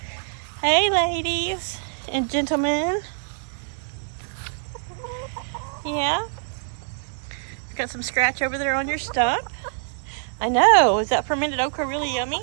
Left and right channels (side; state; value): left; silent; 62 dB below the other